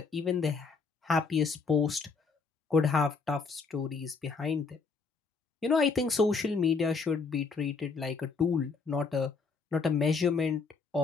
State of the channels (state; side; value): quieter; right; 4.8 dB